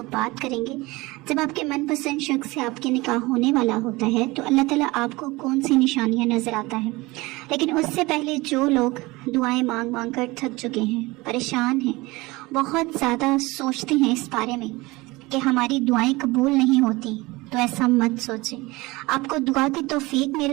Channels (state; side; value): quieter; left; 22.0 dB